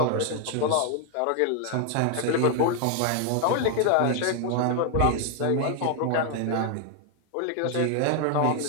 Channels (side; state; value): both; different; correlation 0.00